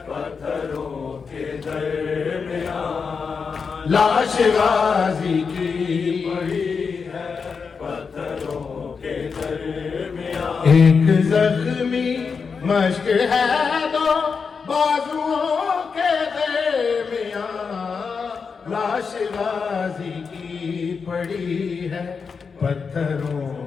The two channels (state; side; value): quieter; right; 5.5 dB